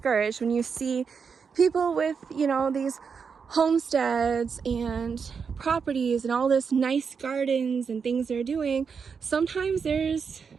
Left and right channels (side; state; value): left; quieter; 6.0 dB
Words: when you see people with, you know, these homesteads and properties and all this nice gardens and things they're doing. Sometimes there's